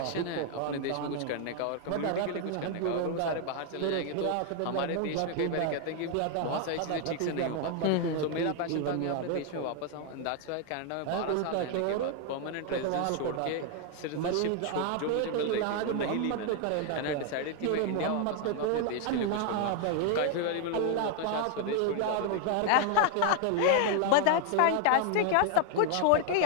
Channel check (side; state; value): both; different; correlation 0.00